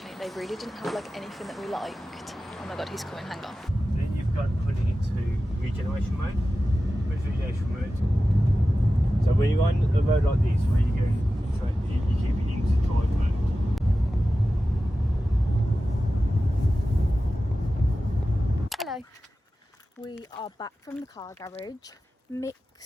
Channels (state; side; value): normal; both; correlation 0.94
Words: They really didn't have like anything that we liked. Oh my god, he's coming, hang on. Then you've got putting into regeneration mode. Where's regeneration mode? So when you're on a road like this, where you go, you keep it into drive mode. Hello. We are back from the car garage.